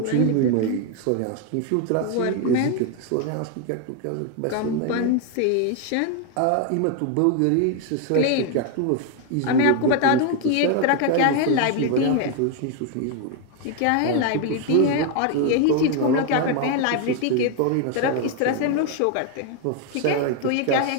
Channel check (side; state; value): both; different; correlation 0.01